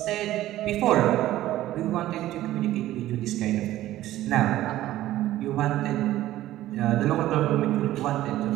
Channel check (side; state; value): left; quieter; 14.6 dB